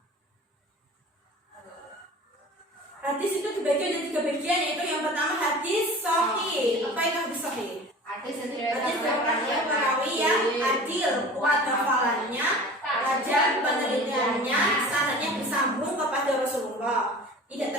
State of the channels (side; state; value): both; normal; correlation 0.40